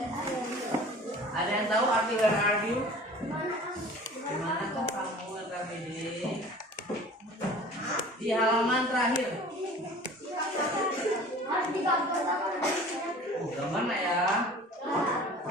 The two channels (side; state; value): both; normal; correlation 0.44